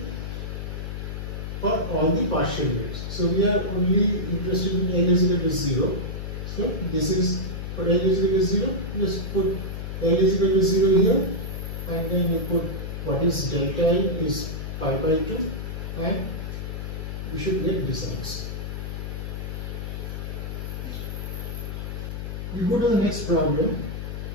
for all the partial waves. So we are only interested in L is equal to 0. So this is for L is equal to 0. Just put L is equal to 0 here and then you put what is delta L is pi by 2 and we should get this answer. We go to the next problem.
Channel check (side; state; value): left; noise; hum, 5 dB below the sound